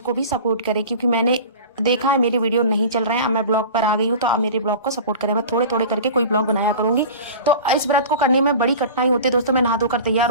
भी सपोर्ट करें, क्योंकि मैंने देखा है मेरे वीडियो नहीं चल रहे हैं। अब मैं ब्लॉग पर आ गई हूँ, तो आप मेरे ब्लॉग को सपोर्ट करें। मैं थोड़े थोड़े करके कोई ब्लॉग बनाया करूंगी। तो इस व्रत को करने में बड़ी कठिनाई होती है दोस्तों। मैं नहा धोकर तैयार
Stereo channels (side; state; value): both; inverted; correlation -0.36